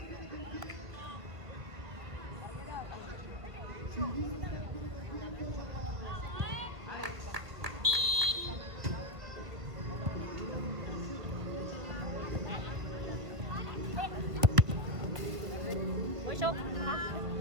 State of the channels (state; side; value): late; left; 1.8 ms